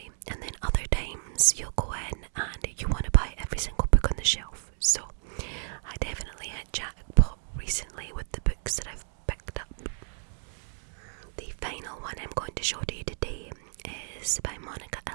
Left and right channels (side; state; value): left; silent; 58 dB below the other